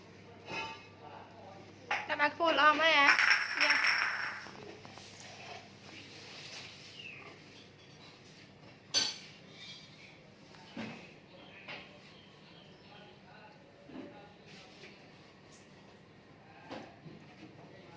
các bạn phun lom ấy à dạ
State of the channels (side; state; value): both; identical; correlation 1.00